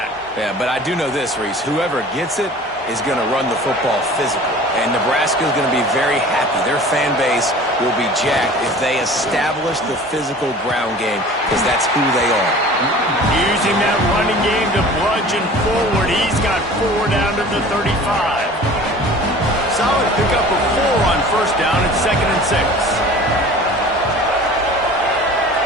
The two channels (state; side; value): normal; both; correlation 0.43